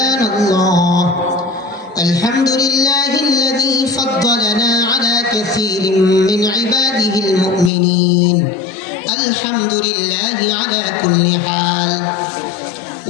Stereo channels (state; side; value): drops out; right; at 7.7 s